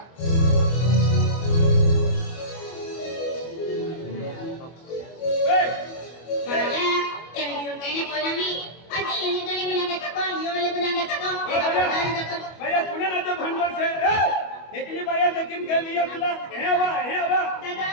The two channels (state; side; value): late; right; 25 ms